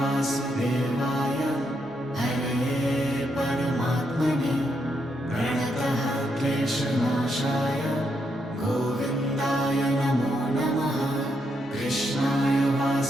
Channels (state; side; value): normal; both; correlation 0.79